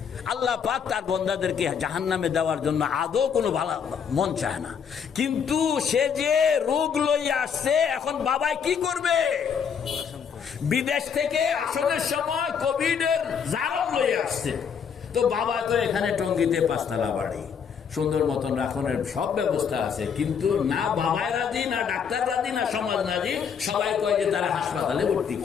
আল্লাহ পাক তার বান্দাদেরকে জাহান্নামে দেওয়ার জন্য আদৌ কোনো ভালো মন চায় না। কিন্তু সে যে রোগ লইয়া আসছে, এখন বাবাই কি করবে? বিদেশ থেকে আসনের সময় কোভিডের জারম লইয়া আসছে, তো বাবা তো এখানে টঙ্গিতে 5 তলা বাড়ি, সুন্দর মতন রাখনের সব ব্যবস্থা আছে, কিন্তু না বাবাই রাজি, না ডাক্তার রাজি, না সমাজ রাজি। সবাই কয় যে তারা হাসপাতালে ভর্তি,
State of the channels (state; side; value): quieter; right; 7.0 dB